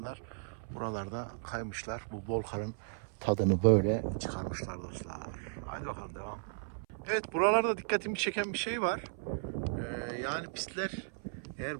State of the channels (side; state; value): left; silent; 54 dB below the other